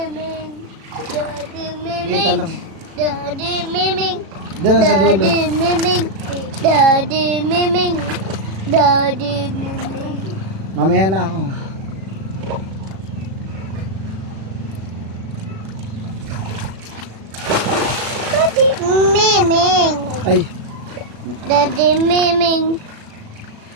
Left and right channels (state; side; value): late; left; 36 ms